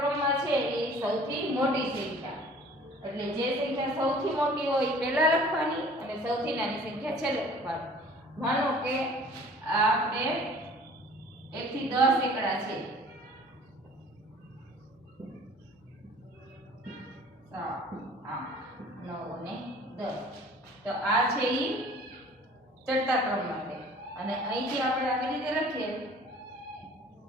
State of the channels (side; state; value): both; normal; correlation 0.49